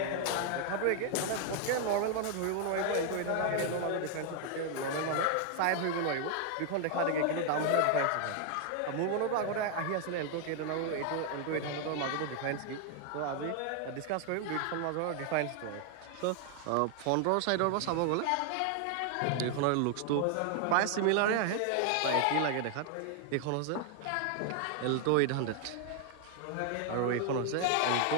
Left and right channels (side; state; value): both; different; correlation 0.00